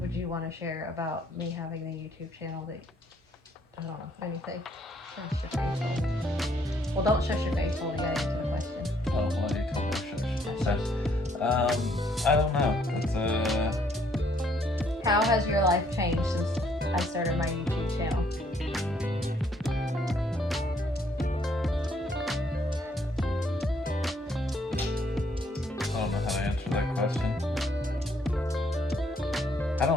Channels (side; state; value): both; normal; correlation 0.67